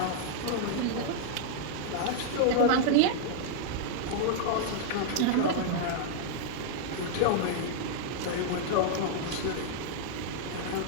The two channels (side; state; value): both; different; correlation -0.01